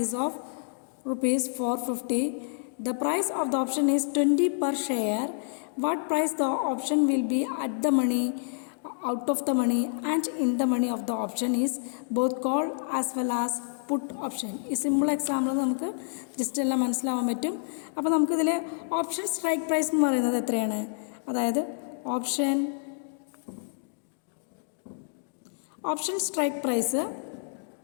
is of rupees 450. The price of the option is 20 per share. What price the option will be at the money, out of the money and in the money of the option is both call as well as put option. ഈ simple example നമുക്ക് just എല്ലാം മനസ്സിലാവാൻ പറ്റും. അപ്പോൾ നമുക്കിതിൽ option strike price എന്ന് പറയുന്നത് എത്രയാണ്? അതായത് option strike price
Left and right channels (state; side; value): silent; right; digital silence